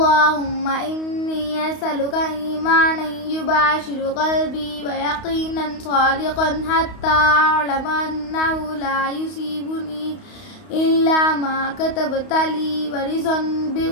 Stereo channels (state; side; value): late; right; 31 ms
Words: إني أسألك إيمانا يباشر قلبي ويقينا صادقا حتى أعلم أنه لا يصيبني إلا ما كتبت لي ورضا